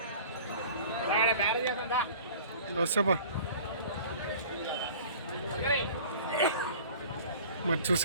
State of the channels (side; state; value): both; inverted; correlation -0.45